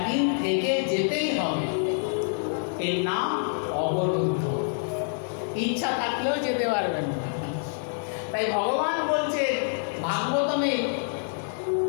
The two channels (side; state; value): right; silent; digital silence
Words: থেকে যেতেই হবে। এর নাম অবরুদ্ধ, ইচ্ছা থাকলেও যেতে পারবেন না। তাই ভগবান বলছে ভাগবতমে,